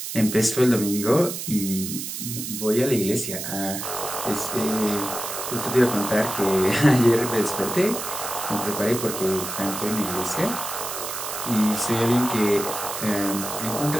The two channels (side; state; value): right; noise; hiss, 6 dB below the sound